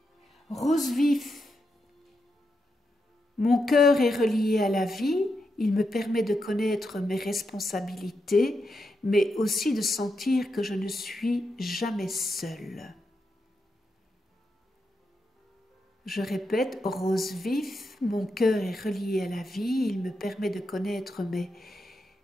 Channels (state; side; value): normal; both; correlation 0.85